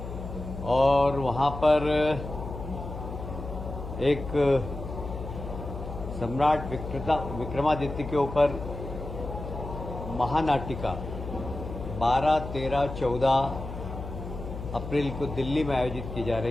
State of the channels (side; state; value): left; noise; hum, 9 dB below the sound